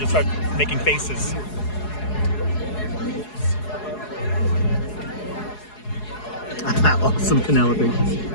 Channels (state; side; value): late; right; 4.7 ms